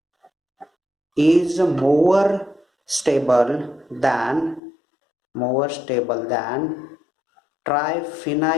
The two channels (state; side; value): drops out; right; at 4.6 s